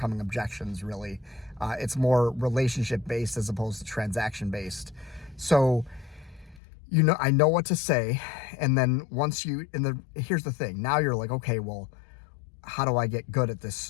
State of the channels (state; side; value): drops out; right; at 6.6 s